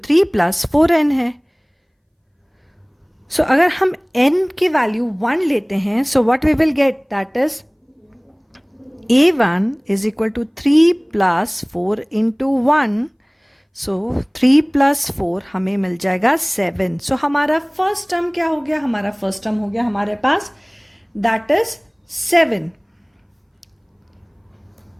3 plus 4n है. सो अगर हम n की वैल्यू 1 लेते हैं so what we will get? That is A1 is equal to 3 plus 4 into 1. So 3 plus 4 हमें मिल जाएगा 7. So हमारा फर्स्ट टर्म क्या हो गया? हमारा फर्स्ट टर्म हो गया हमारे पास, that is 7.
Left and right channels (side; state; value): both; identical; correlation 1.00